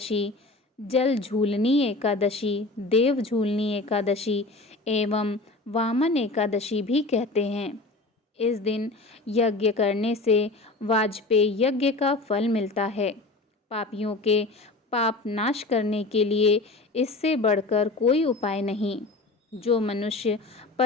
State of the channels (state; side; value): quieter; right; 3.2 dB